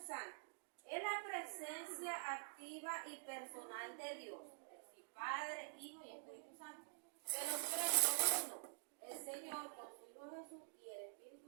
Es la presencia activa y personal de Dios, es decir, Padre, Hijo y Espíritu Santo. Que los tres son uno, el Señor con su Hijo Jesús y el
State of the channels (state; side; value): silent; left; digital silence